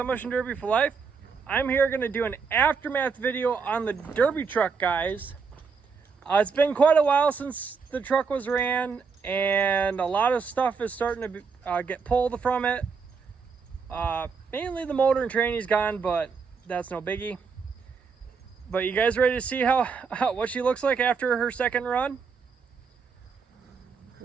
Derby for Life. I'm here going to do an aftermath video on the Derby truck, guys. It's been quite a while since the truck was ran, and a lot of stuff is starting to get pulled from it. Mainly the motor and tranny's gone, but that's no biggie. But you guys ready to see what she looks like after her second run?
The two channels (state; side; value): quieter; left; 5.4 dB